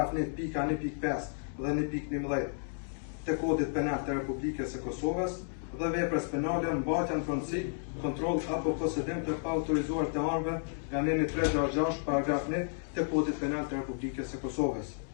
1.1.5 dhe 1.11 të kodit penal të Republikës së Kosovës dhe veprës penale mbajtja në pronësi, kontroll apo posedim të paautorizuar të armëve nga neni 366, paragraf 1 të kodit penal të Republikës së Kosovës.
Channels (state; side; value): silent; right; digital silence